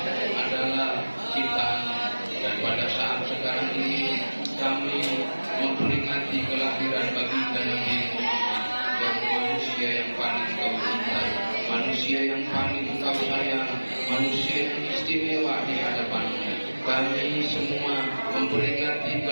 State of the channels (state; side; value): inverted; both; correlation -1.00